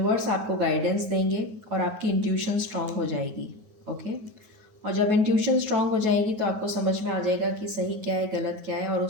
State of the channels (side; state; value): left; late; 9.4 ms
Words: आपको गाइडेंस देंगे और आपकी इंट्यूशन स्ट्रांग हो जाएगी। ओके। और जब इंट्यूशन स्ट्रांग हो जाएगी तो आपको समझ में आ जाएगा कि सही क्या है, गलत क्या है, और